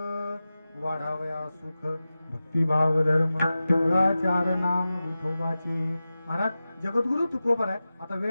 वाढावया सुख भक्तिभाव धर्म कुळाचार नाम विठोबाचे. महाराज जगद्गुरु तुकोबर आहे. आता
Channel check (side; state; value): both; inverted; correlation -0.94